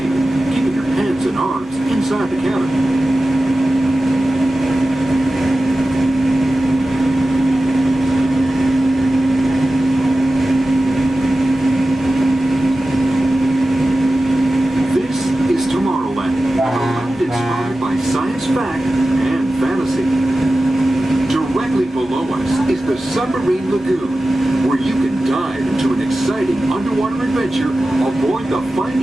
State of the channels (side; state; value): both; normal; correlation 0.94